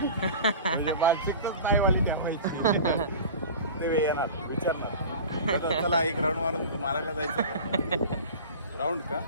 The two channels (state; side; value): inverted; both; correlation -0.36